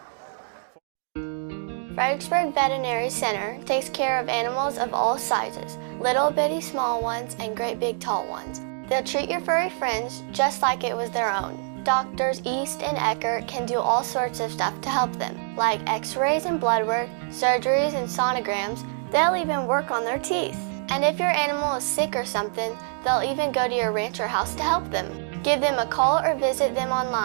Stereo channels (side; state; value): left; silent; 61 dB below the other